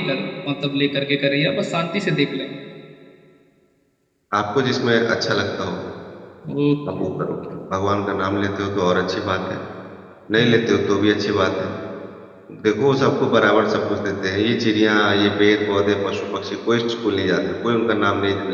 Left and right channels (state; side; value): identical; both; correlation 1.00